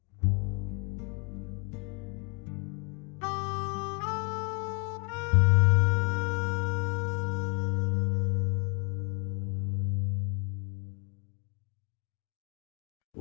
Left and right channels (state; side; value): quieter; right; 36.9 dB